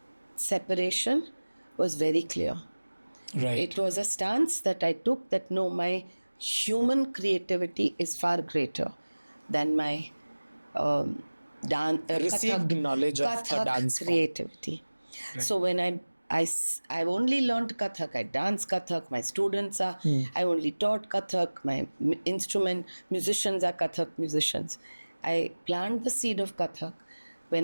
separation was very clear. Right. It was a stance that I took, that no, my human creativity is far greater than my Received knowledge of a Kathak dance form. creativity. Right. So when I've only learned Kathak, I dance Kathak, my students are, I only taught Kathak, my musicians are Kathak musicians. I plant the seed of Kathak.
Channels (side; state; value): both; inverted; correlation -1.00